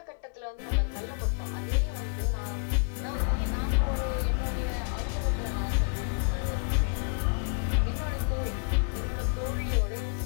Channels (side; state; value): right; silent; 58 dB below the other